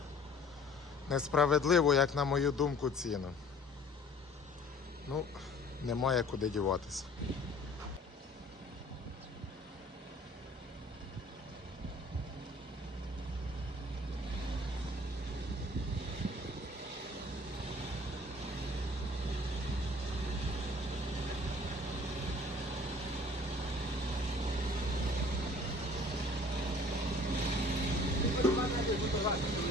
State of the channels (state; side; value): normal; both; correlation 0.52